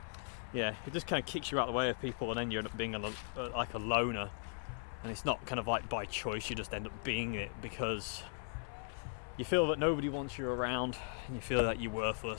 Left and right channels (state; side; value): silent; right; 52 dB below the other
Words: yeah, it just kind of kicks you out the way of people, and then you end up being like a loner, and it's not kind of like by choice. You just end up being it because you feel that nobody wants you around, and you feel that you're